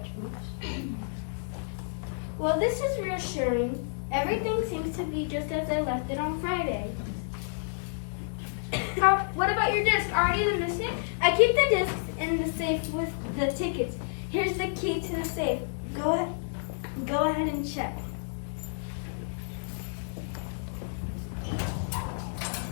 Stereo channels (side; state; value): right; silent; digital silence